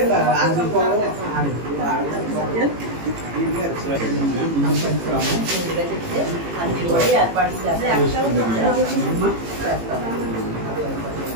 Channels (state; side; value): late; left; 18 ms